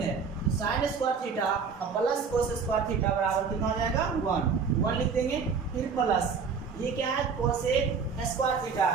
है sin स्क्वायर थीटा और प्लस cos स्क्वायर थीटा बराबर कितना हो जाएगा 1 लिख देंगे फिर प्लस ये क्या है cosec स्क्वायर थीटा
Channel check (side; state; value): left; quieter; 5.6 dB